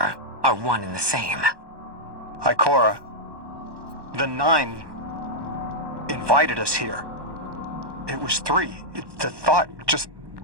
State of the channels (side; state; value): left; late; 1.2 ms